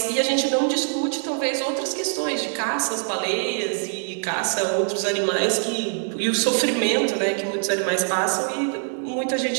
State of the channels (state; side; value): silent; left; 61 dB below the other